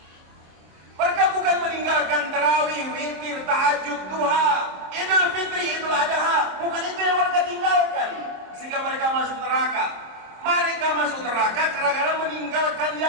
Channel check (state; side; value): late; left; 26 ms